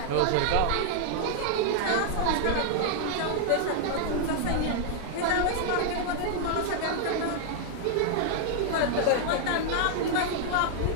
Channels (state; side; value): different; both; correlation 0.00